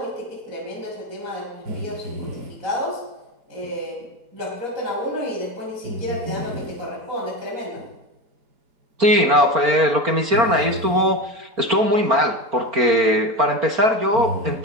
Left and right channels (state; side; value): late; left; 4.4 ms